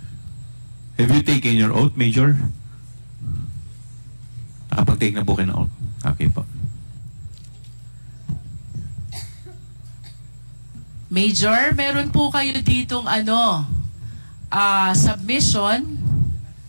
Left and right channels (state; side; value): inverted; both; correlation -1.00